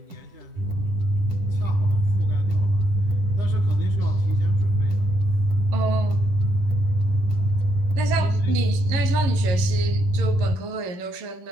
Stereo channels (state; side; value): late; left; 11 ms